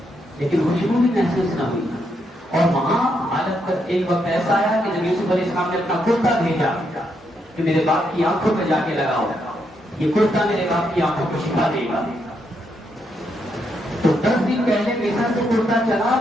لیکن خوشبو بھی محسوس نہ ہوئی، اور وہاں حالت پر ایک وقت ایسا آیا کہ جب یوسف علیہ السلام نے اپنا کرتا بھیجا کہ میرے باپ کی آنکھوں میں جا کے لگاؤ، یہ کرتا میرے باپ کی آنکھوں کو شفا دے گا، تو 10 دن پہلے پیسہ سے کرتا چلا،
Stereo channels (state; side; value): normal; both; correlation 0.78